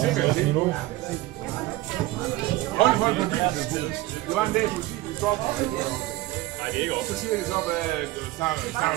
sikkerhedssel. Hold på mobiltelefonen. Det var en dag, politiet ville stoppe mig. Så siger de så, at snakker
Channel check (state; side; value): quieter; left; 17.7 dB